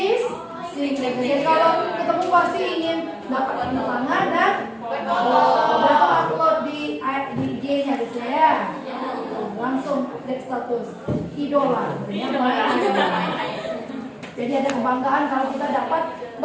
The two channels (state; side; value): identical; both; correlation 1.00